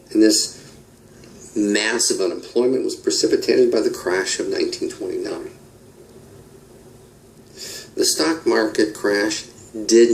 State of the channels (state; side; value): identical; both; correlation 1.00